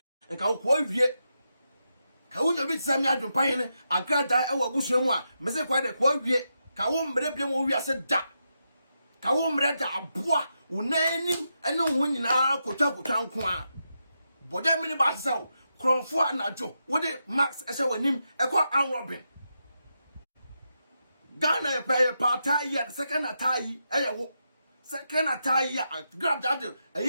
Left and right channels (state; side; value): inverted; both; correlation -0.85